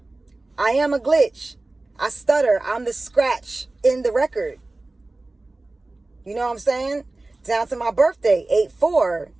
I am a glitch. I stutter. I'm the scratch in the record. You know what I'm saying? Down to my birthday, 8-4.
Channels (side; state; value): left; quieter; 3.0 dB